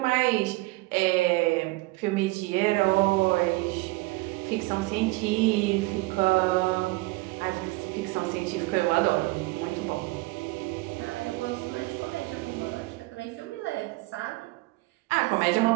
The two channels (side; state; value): left; quieter; 22.4 dB